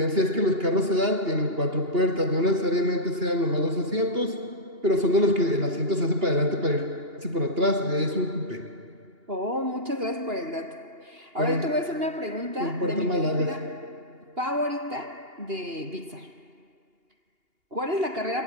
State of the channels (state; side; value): late; left; 2.8 ms